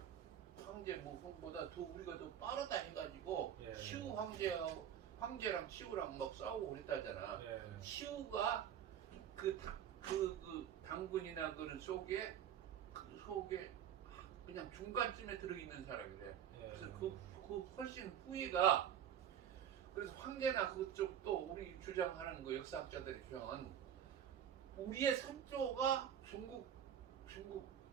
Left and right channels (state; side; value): quieter; left; 9.6 dB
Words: 황제 모성보다 더 우리가 더 빠르다 해가지고 예. 시우 황제랑 시우랑 막 싸우고 그랬다잖아. 예. 시우가 그 당군이나 그런 속에 그냥 중간쯤에 들어있는 사람이래. 예. 그래서 그 훨씬 후에가, 그래서 황제나 그쪽 또 우리 주장하는 그 역사학자들의 주장은 우리의 선조가 중국